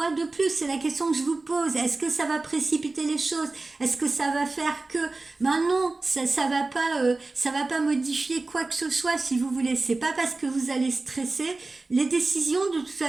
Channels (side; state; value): left; quieter; 3.4 dB